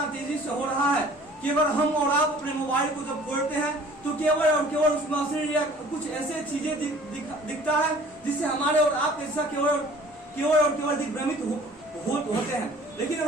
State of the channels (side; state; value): both; normal; correlation 0.50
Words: तेजी से हो रहा है कि अगर हम और आप अपने मोबाइल को जब खोलते हैं तो केवल और केवल उसमें अश्लील या कुछ ऐसे चीजें दिखता है जिससे हमारे और आपके हिस्सा केवल दिग्भ्रमित होते हैं। लेकिन